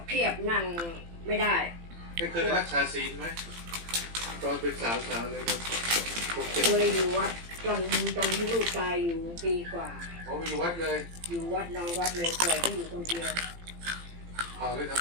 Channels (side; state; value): left; late; 18 ms